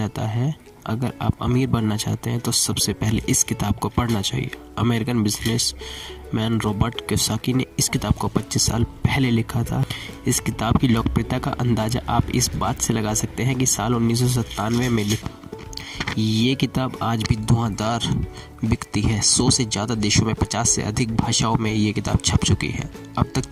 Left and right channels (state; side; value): identical; both; correlation 1.00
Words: है, अगर आप अमीर बनना चाहते हैं तो सबसे पहले इस किताब को पढ़ना चाहिए। अमेरिकन बिजनेसमैन रॉबर्ट कियोसाकी ने इस किताब को 25 साल पहले लिखा था। इस किताब की लोकप्रियता का अंदाज़ा आप इस बात से लगा सकते हैं कि साल 1997 में लिखी ये किताब आज भी धुआंधार बिकती है। 100 से ज़्यादा देशों में 50 से अधिक भाषाओं में ये किताब छप चुकी है। अब तक